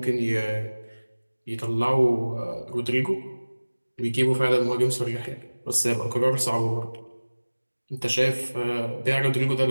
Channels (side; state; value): both; inverted; correlation -1.00